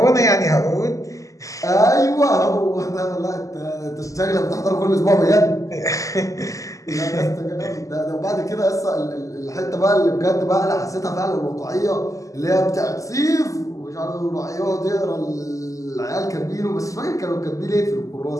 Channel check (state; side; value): late; right; 0.16 ms